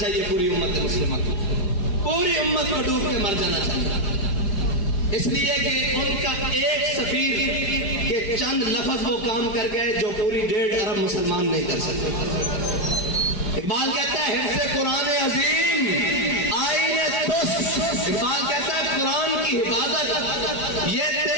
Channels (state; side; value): late; right; 4.9 ms